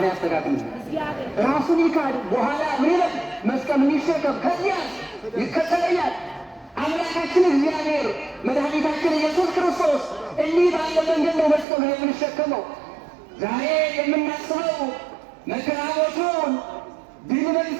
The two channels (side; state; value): left; drops out; at 11.7 s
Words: ያስተካክልልን? ራሱን ይካድ፣ በኋላ ምን ይላል? መስቀሉን ይሸከም፣ ከዚያ ይከተለኛል። አምላካችን እግዚአብሔር መድኃኒታችን ኢየሱስ ክርስቶስ እንዲህ ባለ መንገድ ነው መስቀሉን የምንሸከመው። ዛሬ የምናስበው መከራ ሞቱን፣ ድል